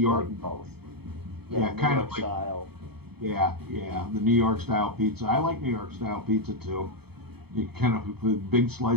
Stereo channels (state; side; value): late; left; 0.97 ms